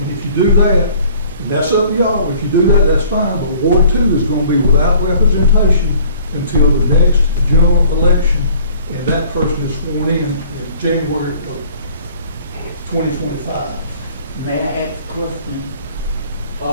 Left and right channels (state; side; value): inverted; both; correlation -0.53